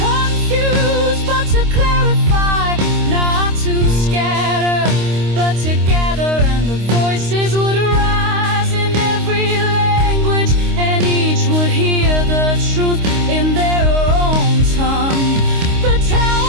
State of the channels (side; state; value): left; late; 26 ms